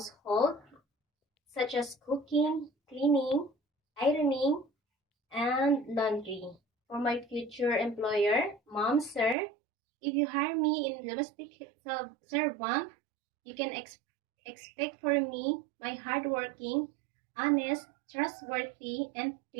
such as cooking, cleaning, ironing, and laundry. For my future employer, Mom, Sir, if you hire me in domestic servant, you can expect for me my hardworking, honest, trustworthy, and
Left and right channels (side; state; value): left; drops out; at 9.3 s